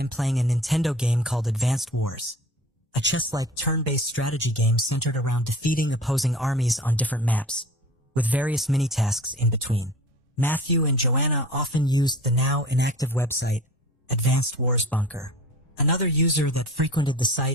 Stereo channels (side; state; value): both; normal; correlation 0.41